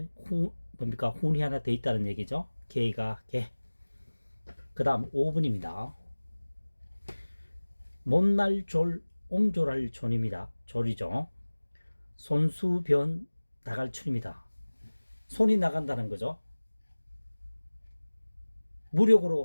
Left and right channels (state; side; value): inverted; both; correlation -1.00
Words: 뭡니까? 훈이 하나 더 있다는 얘기죠. 개가 개. 그 다음 5번입니다. 못날 졸, 옹졸할 존입니다. 졸이죠. 손수변 나갈출입니다. 손이 나간다는 거죠.